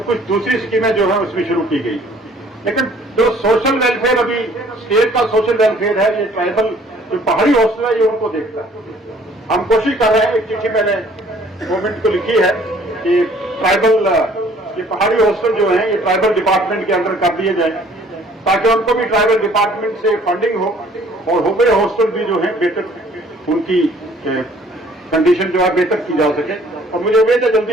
कुछ दूसरी स्कीमें जो है उसमें शुरू की गई, लेकिन जो सोशल वेलफेयर अभी स्टेट का सोशल वेलफेयर है, ये ट्राइबल जो पहाड़ी हॉस्टल है ये उनको देखता है। हम कोशिश कर रहे हैं, एक चिट्ठी मैंने गवर्नमेंट को लिखी है कि ट्राइबल, ये पहाड़ी हॉस्टल जो है ये ट्राइबल डिपार्टमेंट के अंदर कर दिए जाए, ताकि उनको भी ट्राइबल डिपार्टमेंट से फंडिंग हो और हुबे हॉस्टल भी जो है बेहतर, उनकी कंडीशन जो है बेहतर की जा सके। और मुझे उम्मीद है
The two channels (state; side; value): normal; both; correlation 0.57